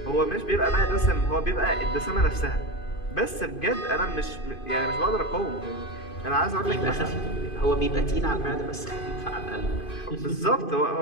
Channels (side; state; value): right; late; 2.5 ms